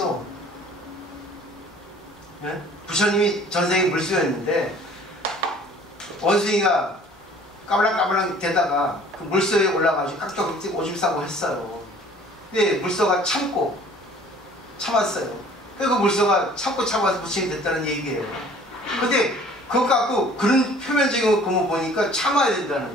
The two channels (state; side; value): normal; both; correlation 0.52